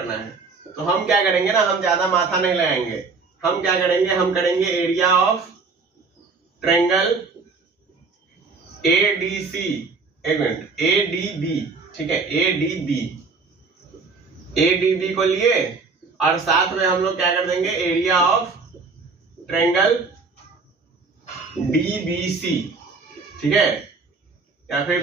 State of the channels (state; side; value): quieter; left; 4.4 dB